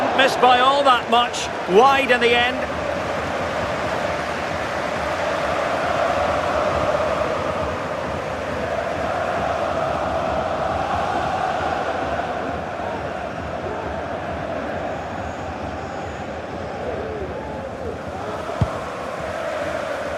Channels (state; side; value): identical; both; correlation 1.00